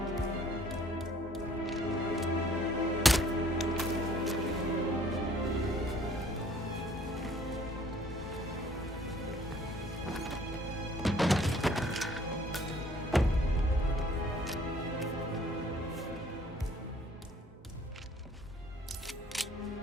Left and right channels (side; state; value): both; normal; correlation 0.57